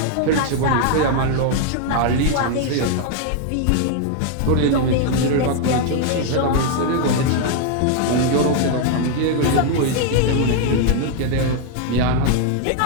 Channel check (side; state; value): both; different; correlation 0.00